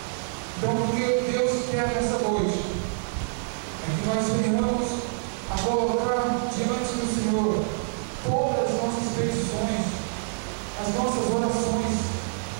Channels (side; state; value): left; silent; digital silence